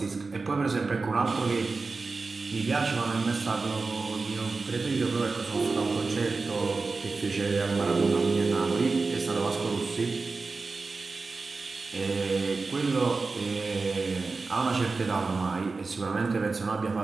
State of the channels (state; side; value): quieter; left; 4.0 dB